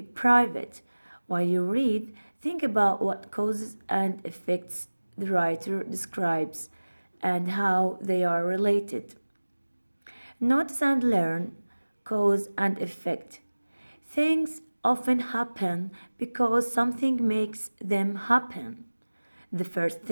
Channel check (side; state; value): both; inverted; correlation -1.00